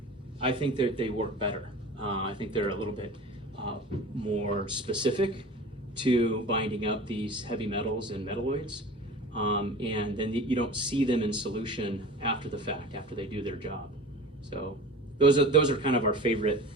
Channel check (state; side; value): normal; both; correlation 0.37